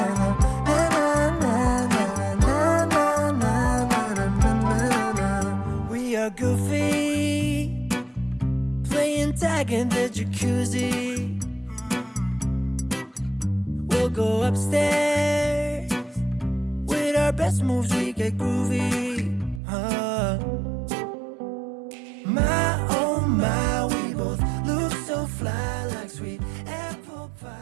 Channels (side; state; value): left; drops out; at 19.6 s